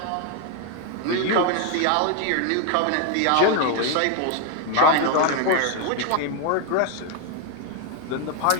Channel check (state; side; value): different; both; correlation 0.01